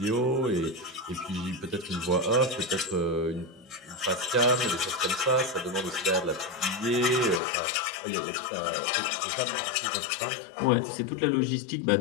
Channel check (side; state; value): right; drops out; at 7.4 s